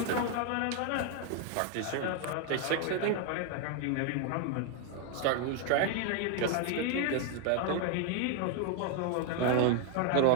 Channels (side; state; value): both; different; correlation 0.01